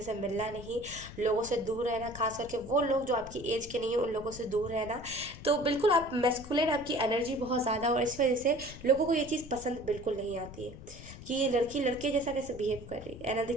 से मिलना नहीं, लोगों से दूर रहना, खास करके वो लोग जो आपकी एज के नहीं है उन लोगों से दूर रहना। तो बिल्कुल आप मैस्कुलिन, आपकी एनर्जी बहुत ज़्यादा, और इस वजह से लोगों को ये चीज़ पसंद बिल्कुल नहीं आती है कि ये लड़की लड़के जैसा कैसे बिहेव कर रही है। एंड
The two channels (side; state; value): left; noise; rumble, 14 dB below the sound